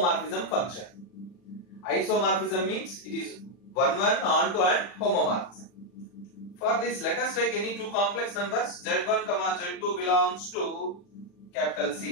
function. Isomorphism means it is 1-1, onto and homomorphism. For this, let us take any two complex numbers z1, z2 belongs to capital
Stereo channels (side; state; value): right; late; 40 ms